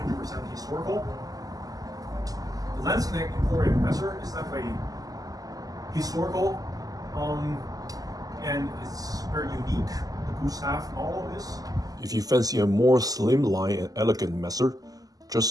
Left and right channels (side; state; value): left; late; 0.17 ms